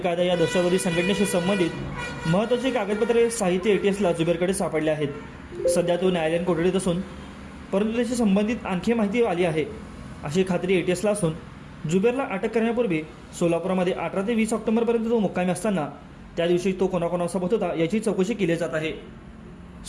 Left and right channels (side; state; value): both; identical; correlation 1.00